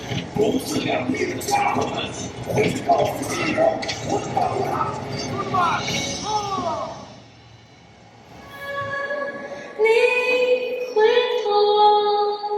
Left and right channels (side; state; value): both; identical; correlation 1.00